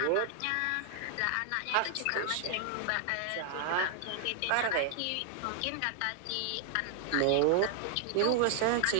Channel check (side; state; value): both; different; correlation 0.00